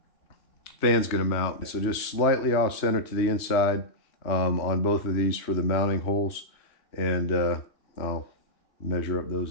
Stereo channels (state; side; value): late; right; 3.3 ms